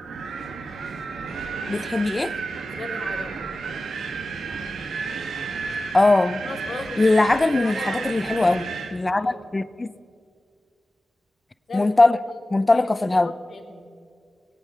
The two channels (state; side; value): normal; both; correlation 0.95